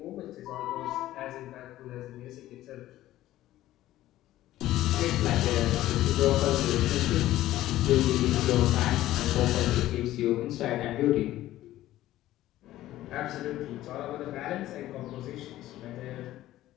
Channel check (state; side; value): quieter; right; 14.7 dB